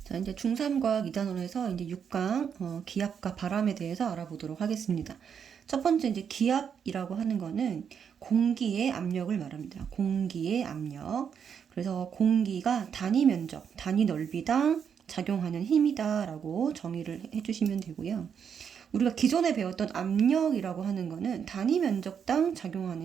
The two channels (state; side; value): quieter; left; 7.4 dB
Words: 자, 이제 중3과학 2단원에서 이제 6강 기압과 바람에 대해서 알아보도록 하겠습니다. 첫 번째 이제 기압이라고 하는 거는 공기의 압력을 말합니다. 공기의 압력. 그래서 공기가 단위 면적, 단위 넓이당 작용하는 힘이다라고 정의를 해주시면 되고요. 우리가 기존에 배웠던 압력이라고 하는 거는 단위 면적당